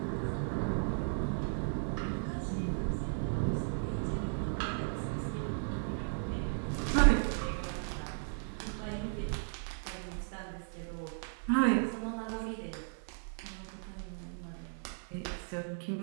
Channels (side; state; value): left; silent; 54 dB below the other